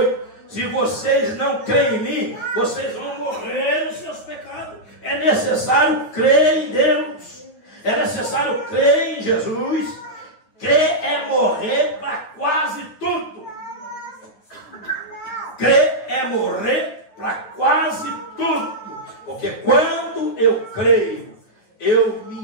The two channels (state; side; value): late; right; 9.4 ms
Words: se vocês não creem em mim, vocês vão morrer nos seus pecados. É necessário crer em Deus. É necessário crer em Jesus. Crer é morrer para quase tudo. Crer é morrer para quase tudo. Porque quando eu creio, eu me